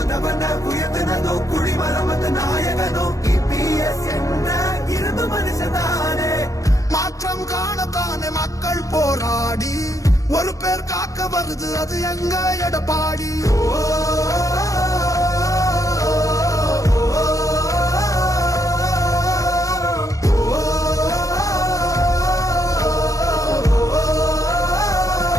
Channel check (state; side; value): late; right; 0.16 ms